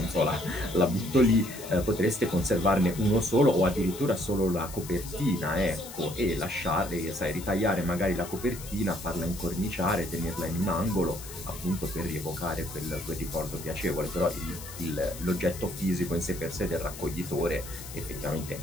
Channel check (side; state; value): left; noise; hiss, 13 dB below the sound